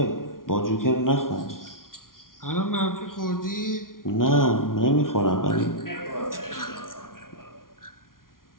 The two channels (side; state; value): right; late; 0.91 ms